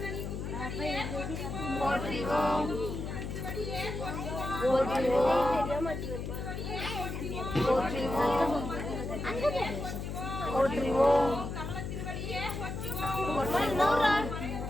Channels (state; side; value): noise; left; hum, 5 dB below the sound